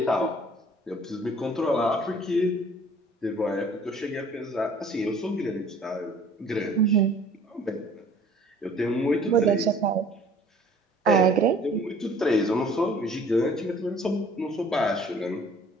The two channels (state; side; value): normal; both; correlation 0.53